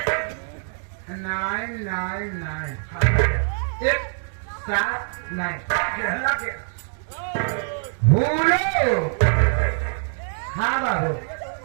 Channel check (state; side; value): silent; left; 63 dB below the other